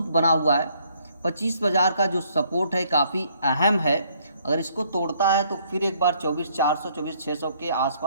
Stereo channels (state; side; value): inverted; both; correlation -0.66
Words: बना हुआ है। 25,000 का जो सपोर्ट है काफ़ी अहम है। अगर इसको तोड़ता है तो फिर एक बार 24,400 24,600 के